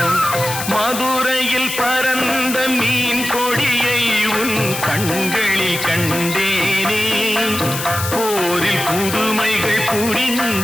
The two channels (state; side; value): noise; left; hiss, 6 dB below the sound